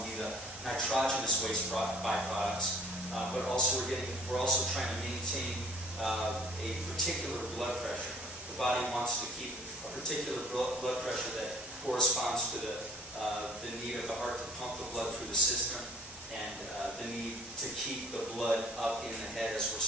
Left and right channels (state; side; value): normal; both; correlation 0.54